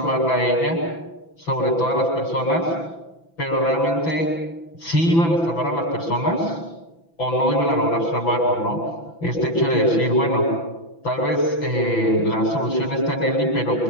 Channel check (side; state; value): right; late; 6.0 ms